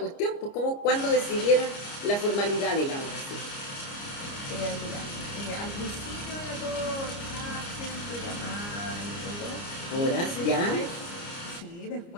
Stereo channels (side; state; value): right; late; 29 ms